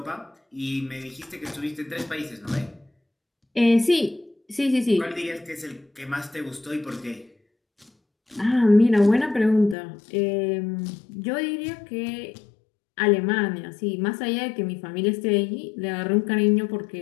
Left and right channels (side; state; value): right; drops out; at 9.8 s